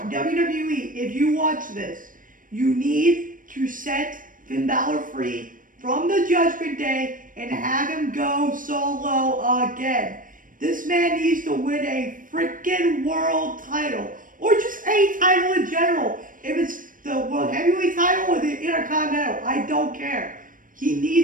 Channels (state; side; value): late; left; 0.39 ms